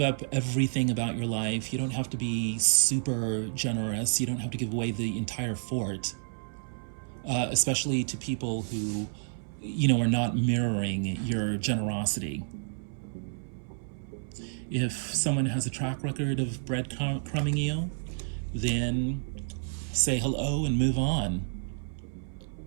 everything about your life. You don't have to be super generous. You don't have to give away the entire fort, especially to people who, are not mirroring your generosity. If someone has a track record of breadcrumbing you, then say hello and move on.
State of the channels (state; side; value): silent; left; 58 dB below the other